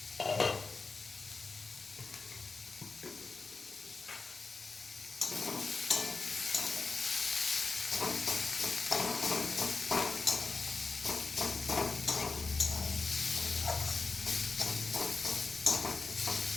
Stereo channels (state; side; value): quieter; right; 4.1 dB